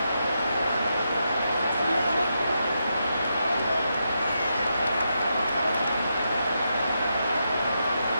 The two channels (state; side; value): inverted; both; correlation -0.84